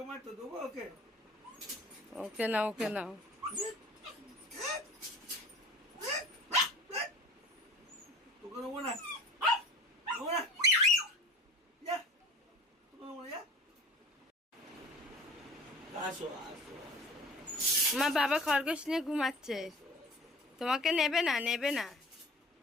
দেবো ওকে? ওকে নাও, ওকে নাও। তোকে দেবো না, দেবো না, যা, তোকে দেবো না, যা। আসো আসো আসো। মা বাবা খরগোশ নিয়ে ঘুমাচ্ছে, তোমাকে নেবে না, নেবে না।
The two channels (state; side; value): normal; both; correlation 0.42